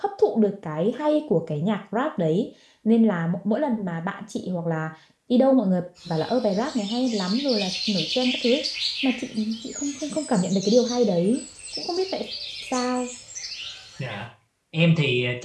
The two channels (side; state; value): both; identical; correlation 1.00